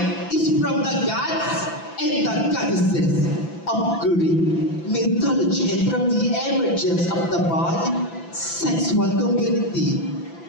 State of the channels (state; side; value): late; right; 5.9 ms